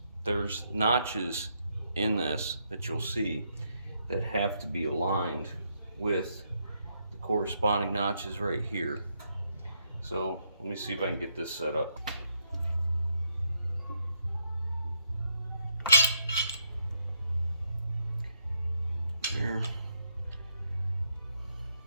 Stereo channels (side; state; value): both; inverted; correlation -0.77